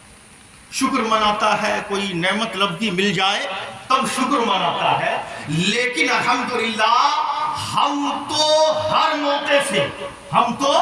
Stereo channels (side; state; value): both; identical; correlation 1.00